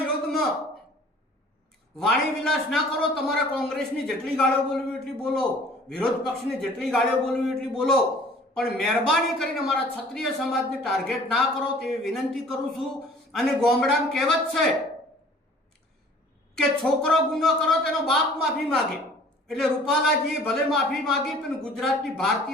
વાણી વિલાસ ના કરો. તમારે કોંગ્રેસની જેટલી ગાળીઓ બોલવી એટલી બોલો, વિરોધ પક્ષની જેટલી ગાળીઓ બોલવી એટલી બોલો, પણ મહેરબાની કરીને અમારા ક્ષત્રિય સમાજને ટાર્ગેટ ના કરો તેવી વિનંતી કરું છું. અને ગામડામાં કહેવત છે કે છોકરો ગુનો કરો તેનો બાપ માફી માગે, એટલે રૂપાલાજીએ ભલે માફી માગી પણ ગુજરાતની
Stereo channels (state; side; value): normal; both; correlation 0.51